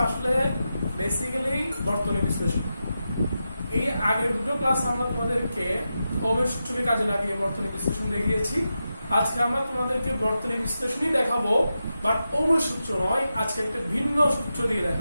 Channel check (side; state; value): both; inverted; correlation -0.90